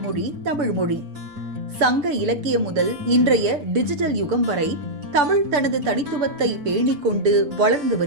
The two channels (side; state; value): left; late; 6.8 ms